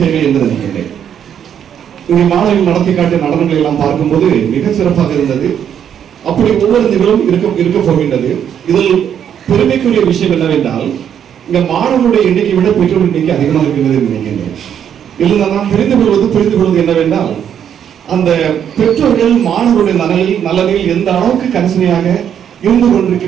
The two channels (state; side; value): quieter; left; 9.0 dB